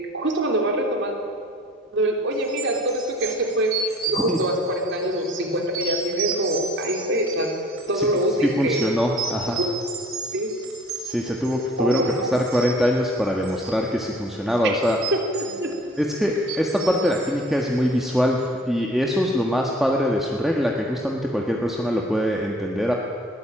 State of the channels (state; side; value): normal; both; correlation 0.51